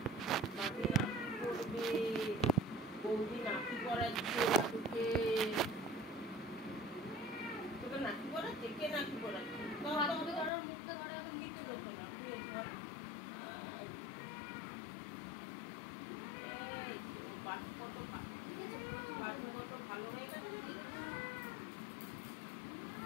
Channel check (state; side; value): drops out; right; at 10.5 s